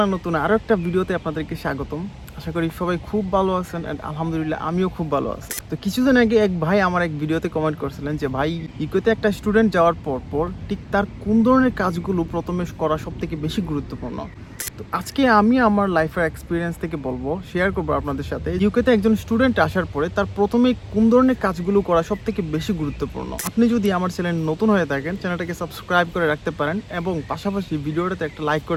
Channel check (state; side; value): identical; both; correlation 1.00